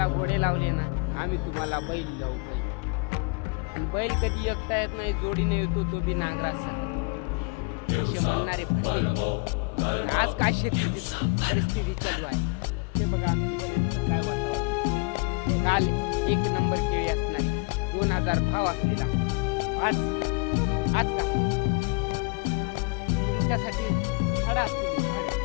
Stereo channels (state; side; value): quieter; right; 31.0 dB